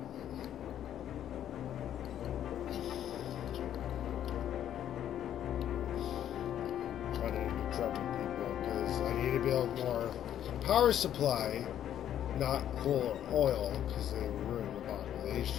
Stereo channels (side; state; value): right; quieter; 10.6 dB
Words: Running into trouble, people, because I need to build more power supply, not coal or oil, because they ruin the